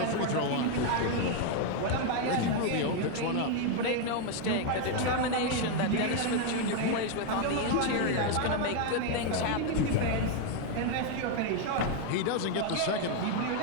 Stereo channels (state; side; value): different; both; correlation 0.01